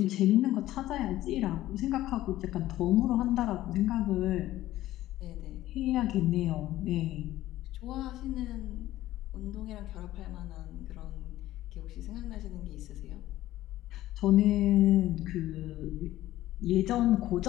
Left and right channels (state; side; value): quieter; right; 15.0 dB